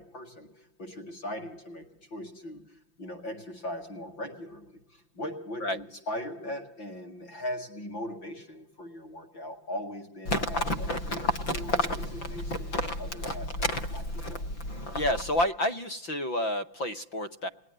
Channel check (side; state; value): right; late; 5.9 ms